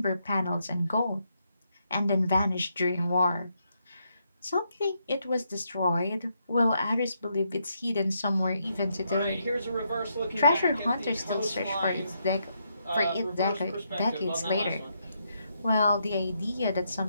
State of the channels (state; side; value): inverted; both; correlation -0.78